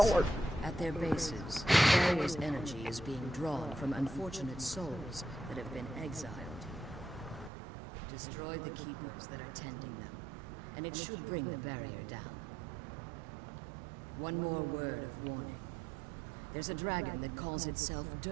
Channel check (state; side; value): drops out; left; at 7.5 s